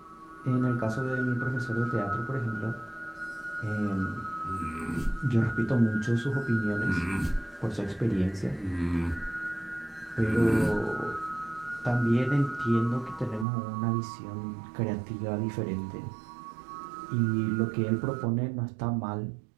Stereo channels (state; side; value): drops out; left; at 13.5 s